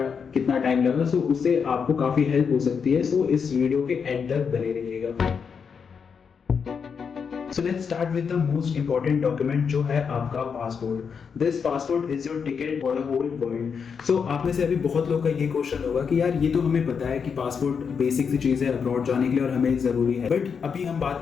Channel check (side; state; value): right; quieter; 6.3 dB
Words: टाइम लगा। सो उससे आपको काफी हेल्प हो सकती है। सो इस वीडियो के एंड तक बने रहिएगा। So let's start with the most important document जो है आपका passport. This passport is your ticket for the whole world. So आप में से अभी बहुत लोगों का ये क्वेश्चन होगा कि यार ये तो हमें पता है कि पासपोर्ट बेसिक सी चीज़ है अब्रॉड जाने के लिए और हमें ज़रूरी है, बट अभी हम बात